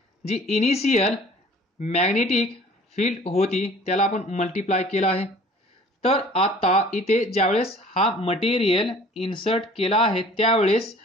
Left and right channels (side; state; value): both; normal; correlation 0.49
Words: जी इनिशियल मॅग्नेटिक फील्ड होती त्याला आपण मल्टिप्लाय केला आहे. तर आता इथे ज्यावेळेस हा मटेरियल इन्सर्ट केला आहे त्यावेळेस